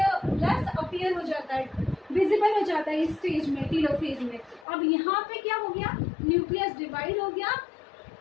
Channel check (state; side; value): drops out; right; at 4.7 s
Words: appear हो जाता है, विजिबल हो जाता है इस स्टेज में, टेलोफेज में। अब यहाँ पे क्या हो गया, न्यूक्लियस डिवाइड हो गया,